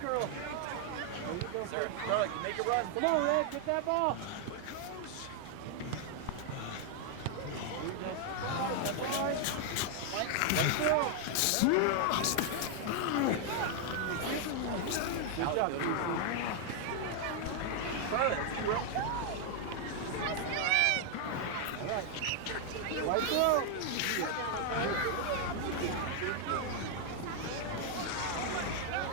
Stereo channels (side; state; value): both; different; correlation 0.00